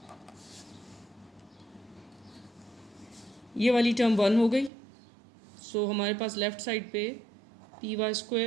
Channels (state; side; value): drops out; left; at 4.7 s